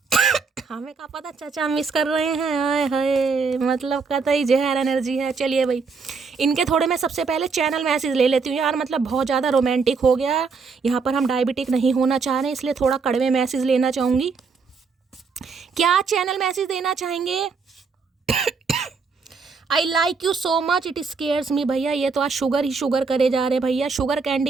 हमें क्या पता, चाचा मिस कर रहे हैं, हाय हाय, मतलब कतई जहर एनर्जी है। चलिए भाई, इनके थोड़े मैं सबसे पहले चैनल मैसेज ले लेती हूँ यार, मतलब बहुत ज़्यादा रोमांटिक हो गया। यहाँ पर हम डायबिटिक नहीं होना चाह रहे, इसलिए थोड़ा कड़वे मैसेज लेना चाहूँगी। क्या चैनल मैसेज देना चाहेंगे? I like you so much, it scares me. भैया ये तो आज शुगर ही शुगर करे जा रहे हैं भैया, शुगर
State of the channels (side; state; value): left; quieter; 5.0 dB